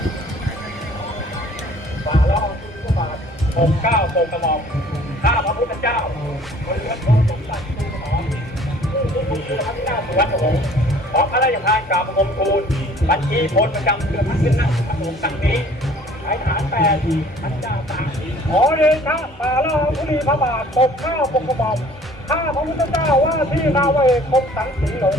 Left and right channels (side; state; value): both; normal; correlation 0.53